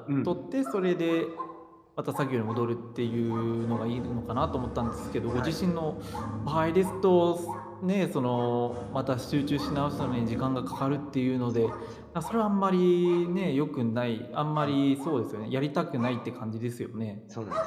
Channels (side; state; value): both; identical; correlation 1.00